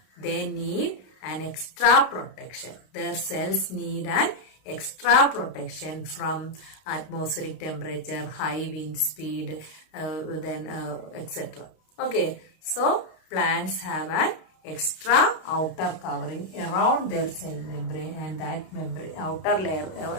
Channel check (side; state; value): right; late; 32 ms